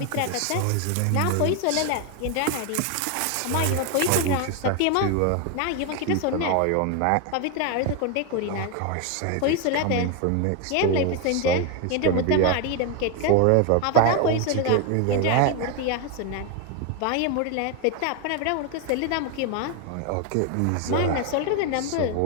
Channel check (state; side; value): different; both; correlation 0.01